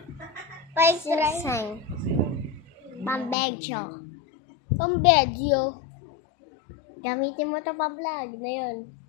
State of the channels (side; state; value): right; drops out; at 3.4 s